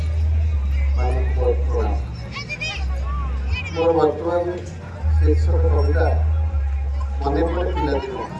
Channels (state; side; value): identical; both; correlation 1.00